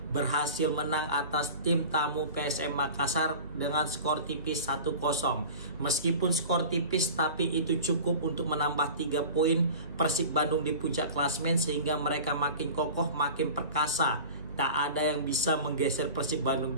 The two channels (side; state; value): both; inverted; correlation -0.37